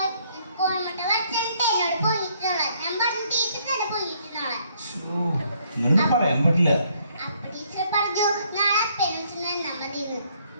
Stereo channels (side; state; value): both; inverted; correlation -0.67